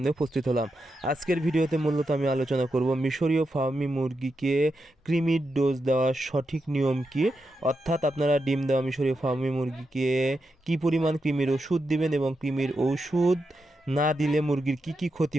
উপস্থিত হলাম। আজকের ভিডিওতে মূলত আমি আলোচনা করব মিশরীয় ফার্মি মুরগিকে কৃমির ডোজ দেওয়ার সঠিক নিয়ম কী, অর্থাৎ আপনারা ডিম দেওয়া মিশরীয় ফার্মি মুরগিকে কী পরিমাণ কৃমির ওষুধ দিবেন এবং কৃমির ওষুধ না দিলে মুরগির কী কী ক্ষতি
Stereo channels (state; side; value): normal; both; correlation 0.86